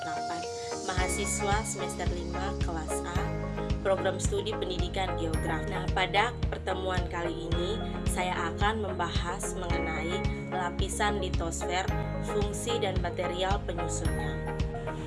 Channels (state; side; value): identical; both; correlation 1.00